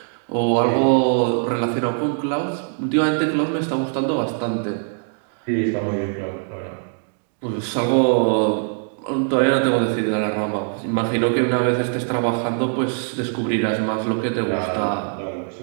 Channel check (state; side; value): silent; left; digital silence